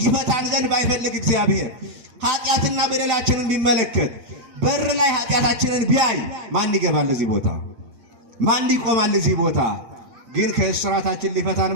ይፈታን ዘንድ ባይፈልግ እግዚአብሔር ኃጢአትና በደላችንን ቢመለከት በር ላይ ኃጢአታችንን ቢያይ ማን ይገባል እዚህ ቦታ? ማን ይቆማል እዚህ ቦታ? ግን ከስራታችን ሊፈታን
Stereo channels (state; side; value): late; left; 7.8 ms